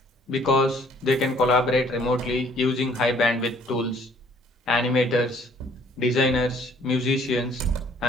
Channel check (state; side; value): normal; both; correlation 0.59